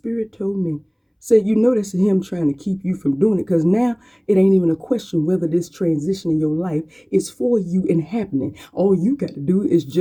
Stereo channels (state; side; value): identical; both; correlation 1.00